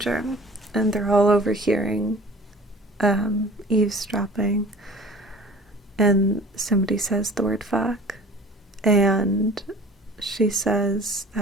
and they're all overhearing eavesdropping, and somebody says the word fuck, and she says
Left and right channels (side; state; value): both; normal; correlation 0.45